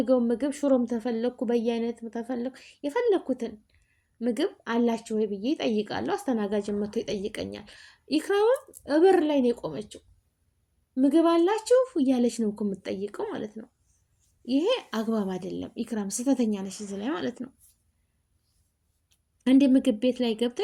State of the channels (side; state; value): both; identical; correlation 1.00